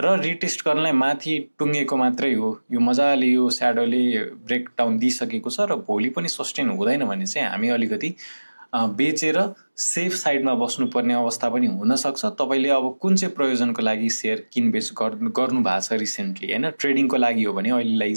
रिटेस्ट गर्नलाई माथि टुङ्गेको मात्रै हो। यो मजाले यो स्याडोले ब्रेकडाउन दिइसकेको छ र भोलि पनि सस्टेन हुँदैन भने चाहिँ हामी अलिकति बेचेर सेफ साइडमा बस्नुपर्ने अवस्था पनि हुनसक्छ। तपाईँले अब कुन चाहिँ प्रयोजनको लागि सेयर किनबेच गर्नु भएको छ रिसेन्टली हैन, ट्रेडिङको लागि हो भने अहिलेलाई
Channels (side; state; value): both; inverted; correlation -1.00